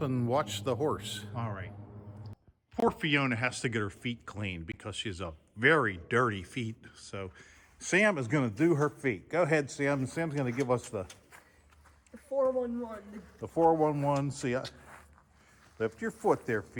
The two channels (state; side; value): identical; both; correlation 1.00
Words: and watch the horse. All right. Poor Fiona has to get her feet cleaned because she's a very dirty feet. So Sam is going to do her feet. Go ahead, Sam. Sam's going to give us the 411. The 411. See, lift your foot there,